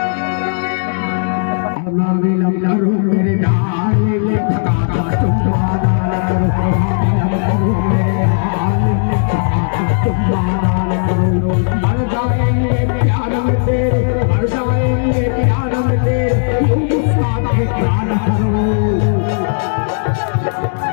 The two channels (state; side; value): silent; right; digital silence